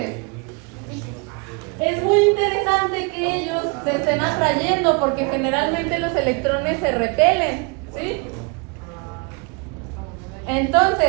es muy interesante que ellos se estén atrayendo porque generalmente los electrones se repelen, ¿sí?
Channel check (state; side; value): quieter; left; 31.6 dB